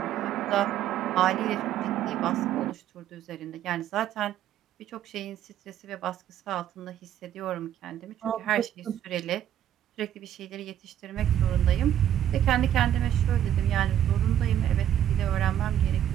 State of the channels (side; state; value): left; quieter; 10.8 dB